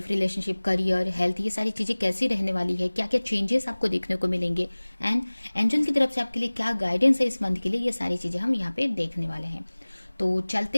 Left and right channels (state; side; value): inverted; both; correlation -1.00